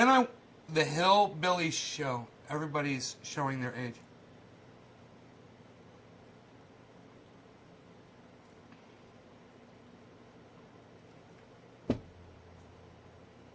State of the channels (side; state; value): both; identical; correlation 1.00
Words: the Hillbilly Show. Everybody's showing their age.